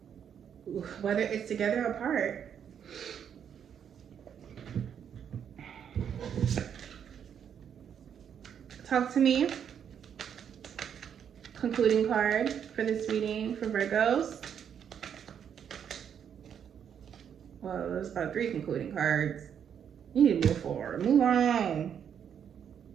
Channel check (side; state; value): left; quieter; 8.3 dB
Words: Whether it's together or apart. Talk to me. Concluding card for this reading for Virgos. Well, there's about 3 concluding cards. You need to move forward. Move on.